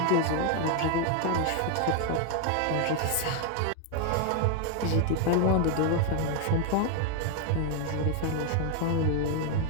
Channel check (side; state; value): both; different; correlation 0.01